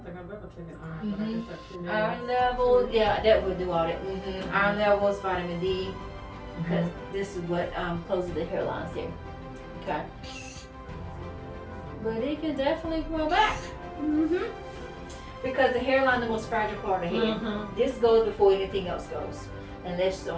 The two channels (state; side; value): identical; both; correlation 1.00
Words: think I've ever taken iron, but I guess that's true. Iron level, yeah, that would do all that. Iron levels, vitamin D, because this is what closes the hairlines there. Okay. But it can definitely grow back. Because the hairline is the most fragile part of the head. This goes before anything else goes. Unless you